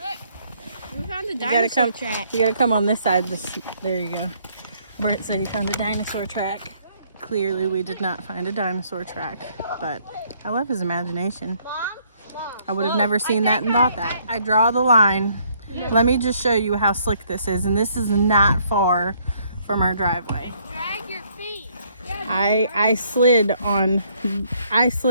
We found a dinosaur track. You gotta come on this side. There you go. Bert said he found a dinosaur track. Clearly we did not find a dinosaur track, but I love his imagination. I would have never seen that and thought that. I draw the line. Let me just show you how slick this is, and this is not far from our driveway. Drag your feet. I slid on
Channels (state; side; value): inverted; both; correlation -0.66